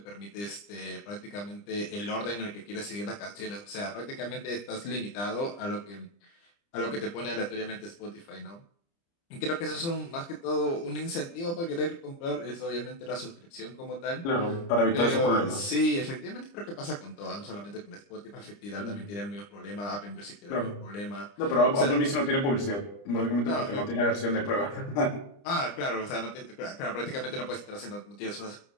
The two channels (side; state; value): right; late; 30 ms